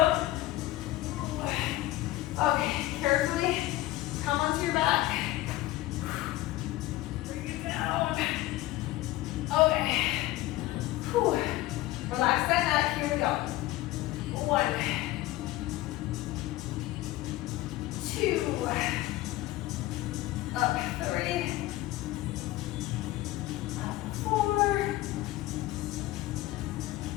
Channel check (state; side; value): quieter; right; 16.8 dB